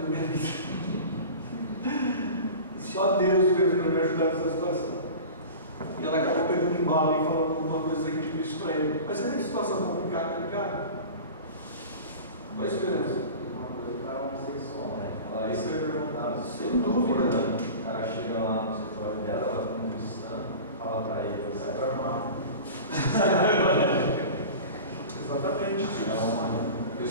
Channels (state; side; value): inverted; both; correlation -0.35